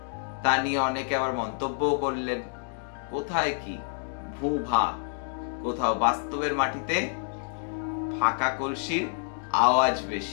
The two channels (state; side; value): silent; right; digital silence